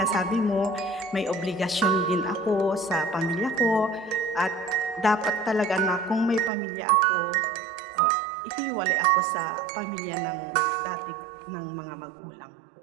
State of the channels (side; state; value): left; drops out; at 6.5 s